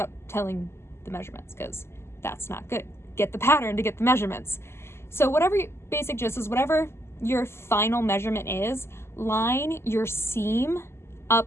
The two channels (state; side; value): late; right; 0.12 ms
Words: telling the measurements, because that's not good. Get the pattern to get the measurements. So whatever basic gist is, whatever your final measurement is, line your seam